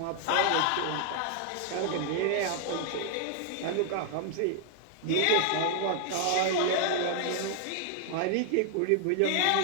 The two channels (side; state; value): both; different; correlation 0.00